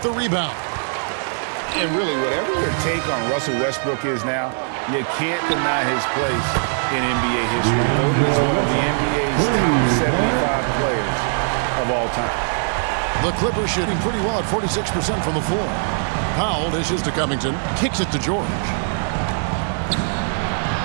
the rebound. And really, whatever your take on Russell Westbrook is now, you can't deny his place in NBA history. Voted as one of the NBA's top 75 players of all time. The Clippers shooting pretty well at 46% from the floor. Powell dishes to Covington, kicks it to George.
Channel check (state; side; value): silent; left; digital silence